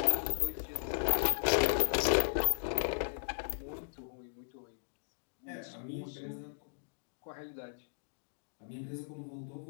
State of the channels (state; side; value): silent; right; digital silence